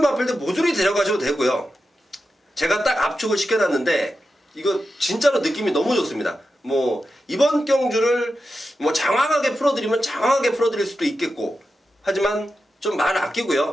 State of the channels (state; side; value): normal; both; correlation 0.90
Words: 마필들 모조리 데려가셔도 되고요. 제가 딱 압축을 시켜놨는데 이거 진짜로 느낌이 너무 좋습니다. 뭐 이번 경주를 뭐 장황하게 풀어드리면 장황하게 풀어드릴 수도 있겠고, 하지만 좀 말